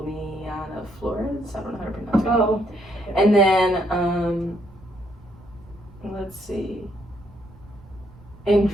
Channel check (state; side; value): noise; right; rumble, 23 dB below the sound